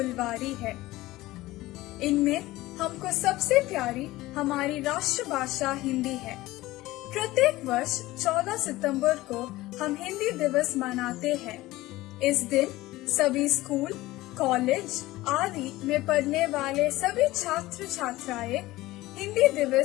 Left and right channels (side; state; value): right; quieter; 18.0 dB